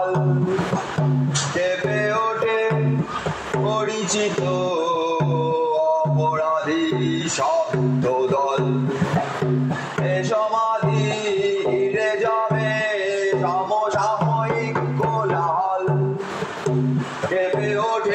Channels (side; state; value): both; identical; correlation 1.00